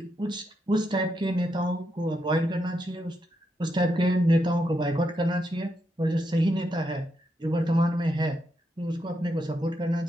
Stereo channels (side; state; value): both; normal; correlation 0.82